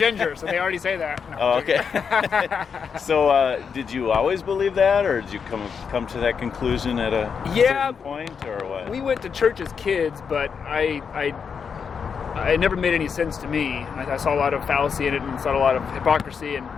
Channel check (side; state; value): right; quieter; 6.4 dB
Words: so they already say that. No, Oh, okay. So, did you always believe that, or did you come to that conclusion at a certain point, or what? We went to church as kids, but it never made any sense to me. I saw a lot of fallacy in it, and saw a lot of hypocrisy, and